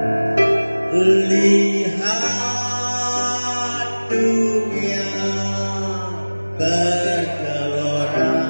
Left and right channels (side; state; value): both; inverted; correlation -1.00